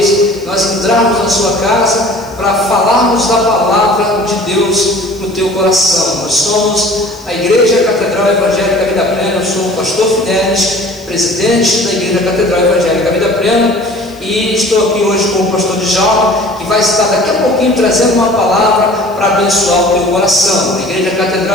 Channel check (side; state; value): left; noise; hiss, 27 dB below the sound